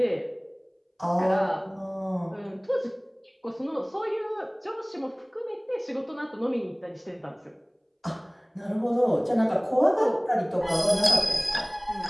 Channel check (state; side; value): identical; both; correlation 1.00